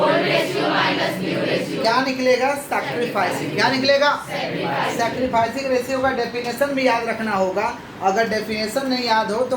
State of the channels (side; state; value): both; identical; correlation 1.00